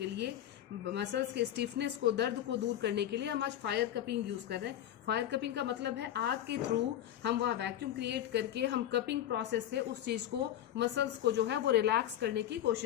लिए, मसल्स के स्टिफनेस को, दर्द को दूर करने के लिए हम आज फायर कपिंग यूज कर रहे हैं। फायर कपिंग का मतलब है आग के थ्रू हम वहाँ वैक्यूम क्रिएट करके हम कपिंग प्रोसेस से उस चीज को, मसल्स को जो है वो रिलैक्स करने की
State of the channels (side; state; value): right; quieter; 11.5 dB